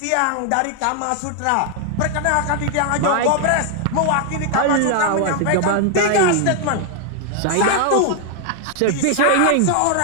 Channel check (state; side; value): different; both; correlation 0.00